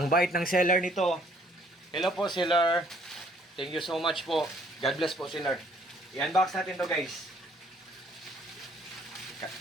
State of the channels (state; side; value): normal; both; correlation 0.62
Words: bait ng seller nito. Hello po seller. Thank you so much po. God bless po seller. I-unbox natin to guys.